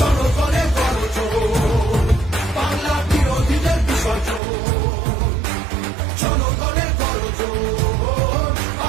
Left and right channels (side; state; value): left; drops out; at 4.4 s